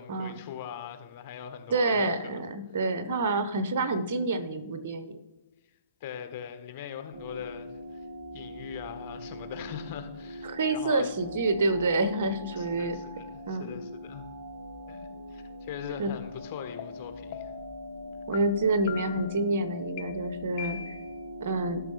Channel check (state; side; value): inverted; both; correlation -0.58